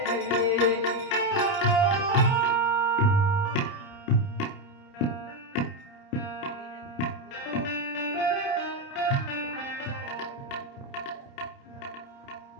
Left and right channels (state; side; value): late; right; 30 ms